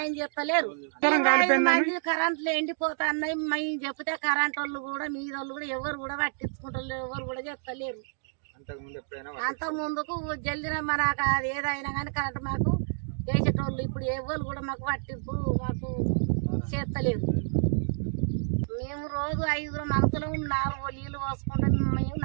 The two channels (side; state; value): left; silent; digital silence